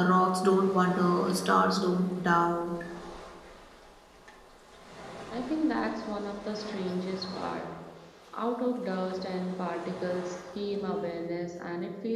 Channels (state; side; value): identical; both; correlation 1.00